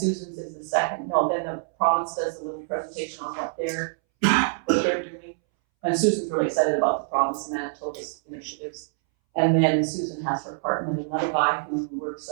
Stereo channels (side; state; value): left; silent; 61 dB below the other